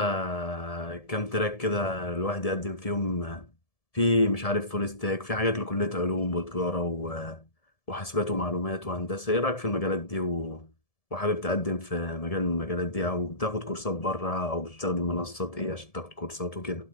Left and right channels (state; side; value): late; right; 1.7 ms